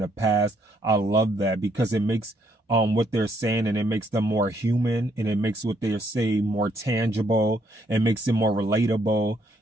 past. I love that, because it makes what they're saying, and it makes them more human, and it makes what they're saying more tangible, and makes it more relatable.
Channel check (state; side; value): normal; both; correlation 0.70